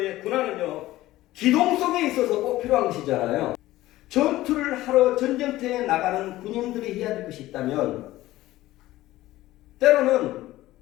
군화는요, 기동성에 있어서 꼭 필요한 것이잖아요. 전투를 하러 전쟁터에 나가는 군인들이 해야 될 것이 있다면 때로는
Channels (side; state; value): right; quieter; 16.3 dB